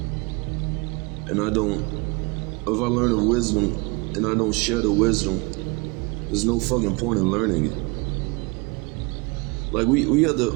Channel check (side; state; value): left; quieter; 27.9 dB